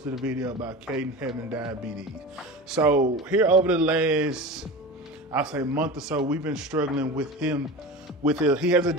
a video about Caden having diabetes. So here over the last, I'll say month or so, we've been struggling with him. He has a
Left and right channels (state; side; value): normal; both; correlation 0.31